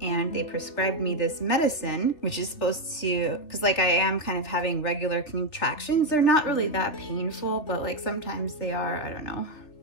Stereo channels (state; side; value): late; right; 3.2 ms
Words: they prescribed me this medicine, which is supposed to, because like I am kind of having regular contractions. They're not really that painful, but like sometimes they are. I don't know,